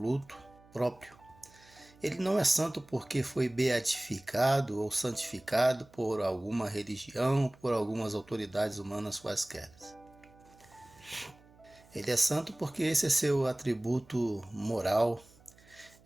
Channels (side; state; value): right; noise; hum, 27 dB below the sound